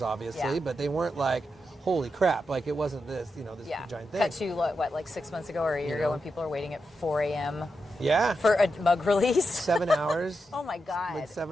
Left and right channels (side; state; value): both; normal; correlation 0.87